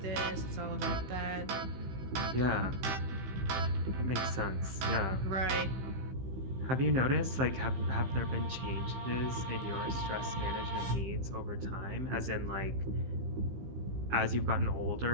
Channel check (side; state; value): left; late; 15 ms